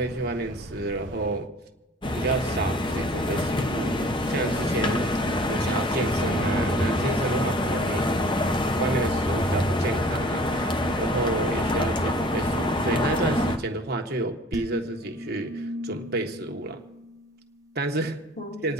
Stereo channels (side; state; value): both; normal; correlation 0.48